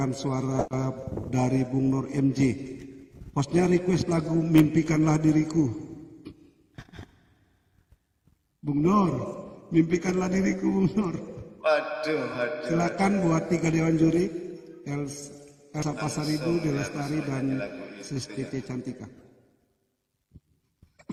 suara dari Bung Nur MJ. Hostnya request lagu Mimpikanlah Diriku. Bung Nur, mimpikanlah diriku Bung Nur. Waduh. Silakan buat tiga Dewan Juri, Elsa Pasaribu, Delastari, dan Sestiti Cantika.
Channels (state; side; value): identical; both; correlation 1.00